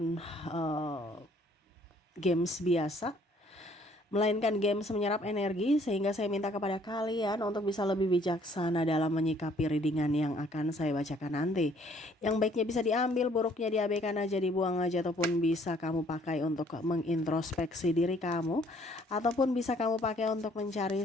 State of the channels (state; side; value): normal; both; correlation 0.61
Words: games biasa, melainkan games menyerap energi, sehingga saya minta kepada kalian untuk bisa lebih bijaksana dalam menyikapi readingan yang akan saya bacakan nanti. Yang baiknya bisa diambil, buruknya diabaikan aja, dibuang aja, ataupun bisa kamu pakai untuk mengintrospeksi diri kamu, ataupun bisa kamu pakai untuk